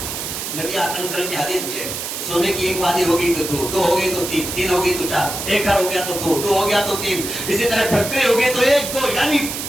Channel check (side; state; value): right; noise; hiss, 5 dB below the sound